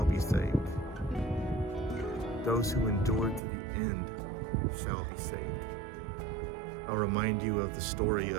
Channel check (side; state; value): left; drops out; at 3.4 s